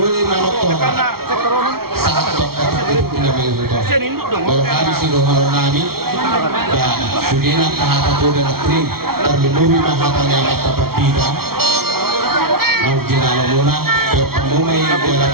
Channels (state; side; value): late; left; 0.94 ms